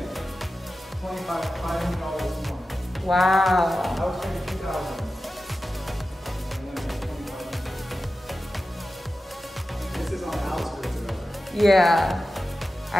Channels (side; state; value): both; normal; correlation 0.93